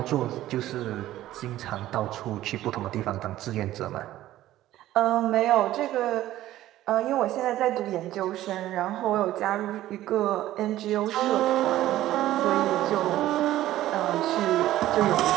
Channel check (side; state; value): left; quieter; 14.3 dB